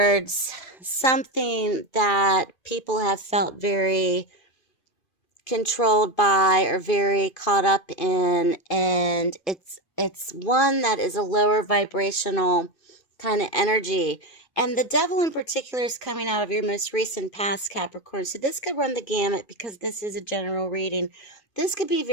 something that people have felt very controlled by or very caught up in. And it's one that is a lower vibrational kind of energy. And the Devil in particular is coming out of your most recent past, Capricorn. So this could run the gamut because this is a general reading. This could be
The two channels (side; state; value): right; late; 2.5 ms